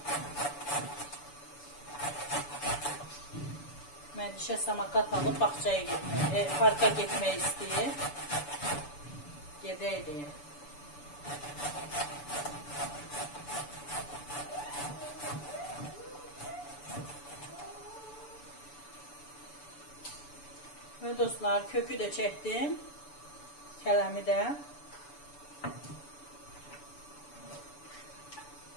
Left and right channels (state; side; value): late; right; 6.9 ms